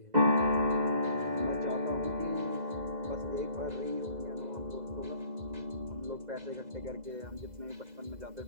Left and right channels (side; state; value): left; late; 2.0 ms